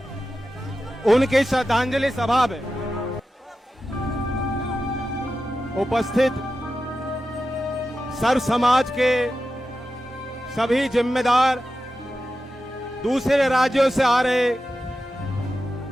उनकी श्रद्धांजलि सभा में उपस्थित सर्व समाज के सभी जिम्मेदार, दूसरे राज्यों से आ रहे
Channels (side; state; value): both; normal; correlation 0.92